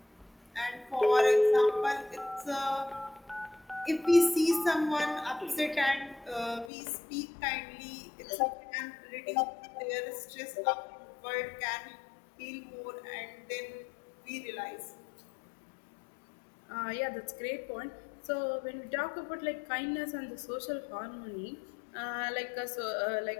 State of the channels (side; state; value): right; drops out; at 6.7 s